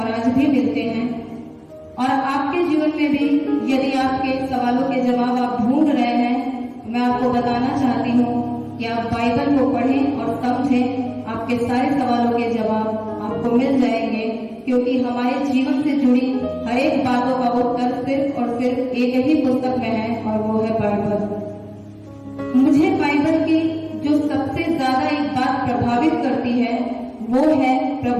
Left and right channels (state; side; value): identical; both; correlation 1.00